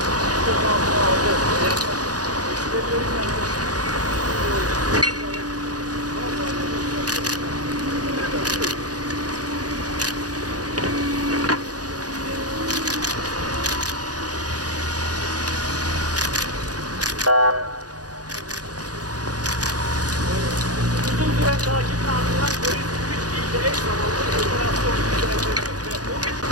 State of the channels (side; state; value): left; late; 0.68 ms